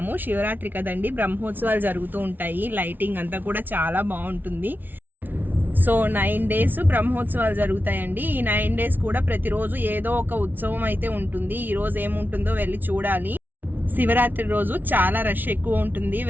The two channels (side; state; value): left; late; 0.088 ms